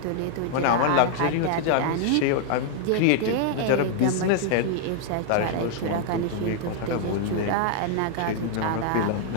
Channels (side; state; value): both; different; correlation 0.00